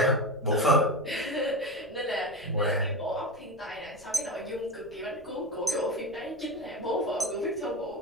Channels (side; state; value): left; noise; rumble, 26 dB below the sound